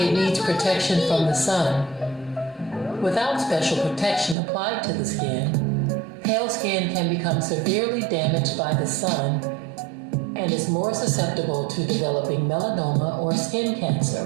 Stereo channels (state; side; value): drops out; left; at 4.4 s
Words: needs protection from the sun. Without special protection applied to the skin, pale skin can become severely damaged by the sun and is more susceptible to developing melanoma or skin